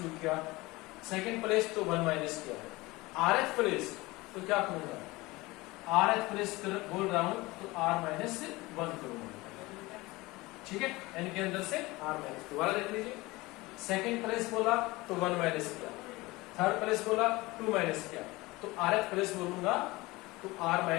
किया, सेकंड प्लेस तो 1 माइनस किया है। rth प्लेस तो क्या करूंगा? rth प्लेस बोल रहा हूं तो r-1 करूंगा। ठीक है, n के अंदर से r-, दोबारा देख लीजिए। सेकंड प्लेस बोला तो 1 माइनस किया, थर्ड प्लेस बोला 2 माइनस किया, तो rth प्लेस बोलूंगा तो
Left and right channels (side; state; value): right; quieter; 21.5 dB